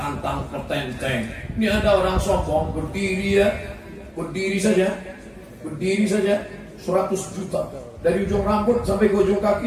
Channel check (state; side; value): identical; both; correlation 1.00